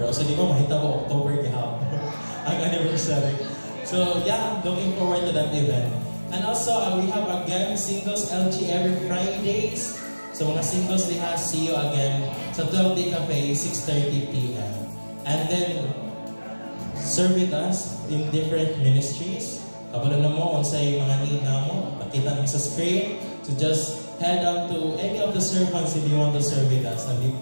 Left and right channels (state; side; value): inverted; both; correlation -1.00